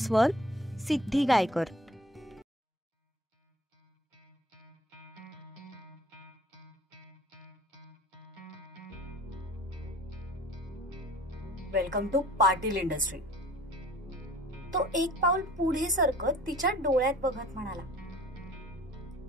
Siddhi Gaykar. Welcome to Patil industry. तो एक पाऊल पुढे सरकत तिच्या डोळ्यात बघत म्हणाला.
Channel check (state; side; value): normal; both; correlation 0.48